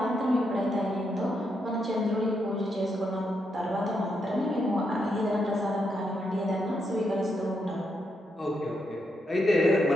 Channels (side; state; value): both; normal; correlation 0.81